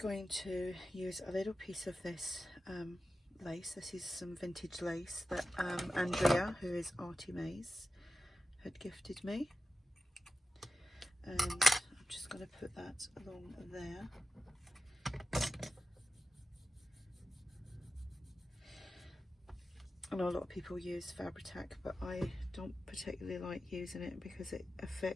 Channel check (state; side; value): normal; both; correlation 0.93